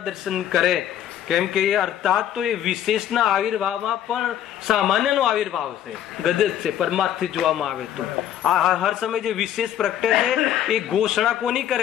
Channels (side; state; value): right; quieter; 10.9 dB